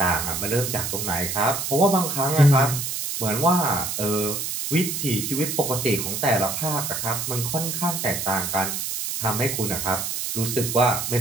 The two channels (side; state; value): right; noise; hiss, 3 dB below the sound